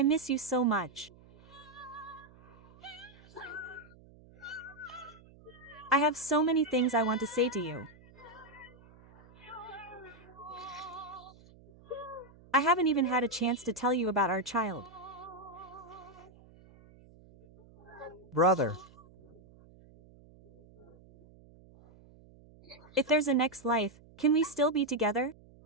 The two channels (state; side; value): noise; right; hum, 24 dB below the sound